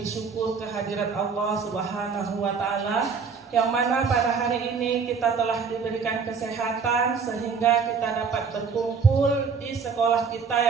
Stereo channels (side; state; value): left; quieter; 5.6 dB